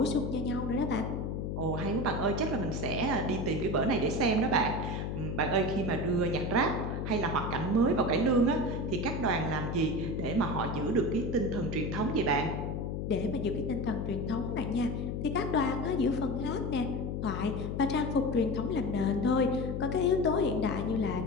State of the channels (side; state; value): left; noise; hum, 3 dB below the sound